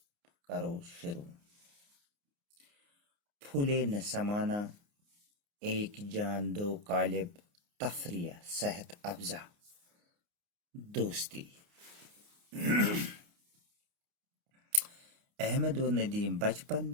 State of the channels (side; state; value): left; late; 29 ms